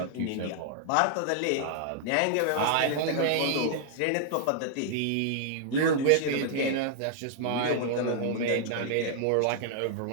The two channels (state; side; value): different; both; correlation -0.01